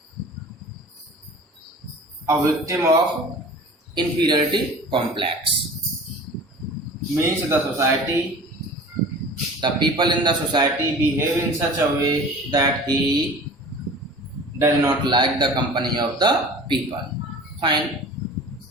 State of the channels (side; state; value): both; normal; correlation 0.41